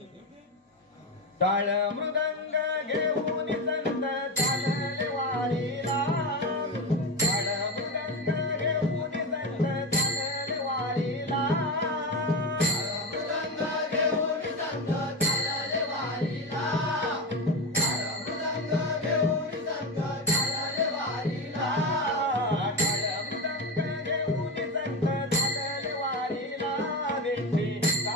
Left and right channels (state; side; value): normal; both; correlation 0.19